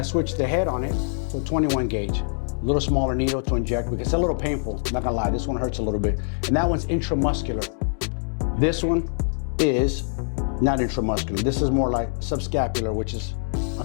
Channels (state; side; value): silent; right; 62 dB below the other